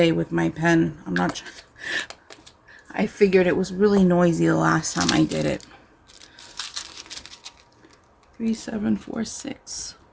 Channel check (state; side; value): identical; both; correlation 1.00